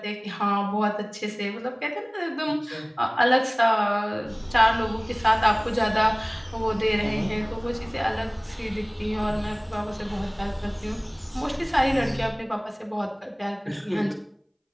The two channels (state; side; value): identical; both; correlation 1.00